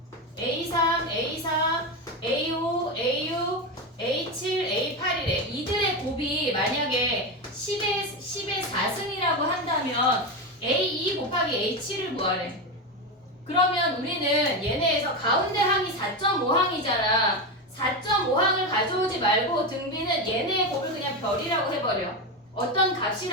A3, A4, A5, A6, A7, A8이래. 이들의 곱이 만약에 10의 4승이라고 한다면 A2 곱하기 A7을 구하래. 그러면 우리는 얘네에서 가운데 항이 4.5항이잖아. 4.5항을 가져오지 말고 등비는 얘네의 곱을 그냥 별이라고 해버려. 어떤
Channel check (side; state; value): both; normal; correlation 0.15